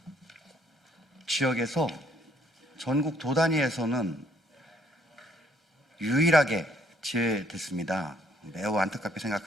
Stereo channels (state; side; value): normal; both; correlation 0.65